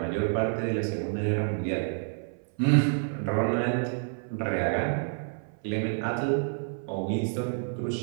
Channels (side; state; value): left; silent; 57 dB below the other